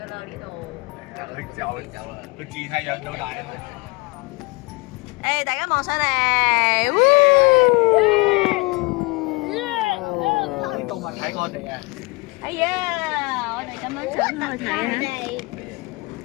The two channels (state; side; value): quieter; right; 25.8 dB